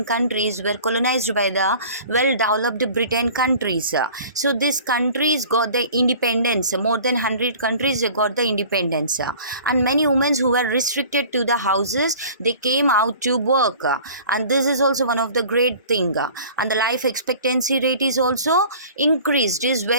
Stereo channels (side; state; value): both; inverted; correlation -0.46